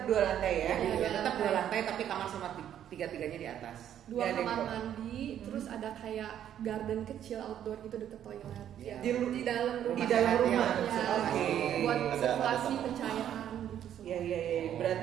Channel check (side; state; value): left; quieter; 10.4 dB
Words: 2 lantai ya. Iya. Ya, tetap 2 lantai tapi kamar sama tiga-tiganya di atas. 2 Nggak ada kamar yang mandi, terus ada kayak garden kecil outdoor gitu deket toilet. Iya. Ya, di dalam rumah. Di dalam rumah. Ya, Oke. buat Ada sirkulasi tempat. pencahayaan gitu semua. Iya iya iya.